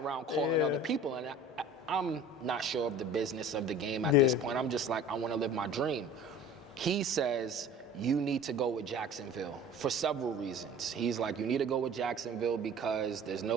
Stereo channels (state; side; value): normal; both; correlation 0.43